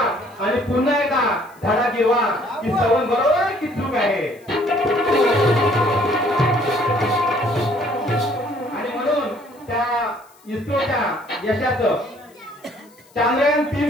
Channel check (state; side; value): noise; left; hiss, 29 dB below the sound